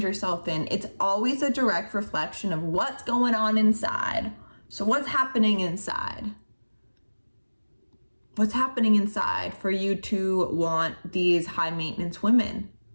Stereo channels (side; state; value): both; inverted; correlation -1.00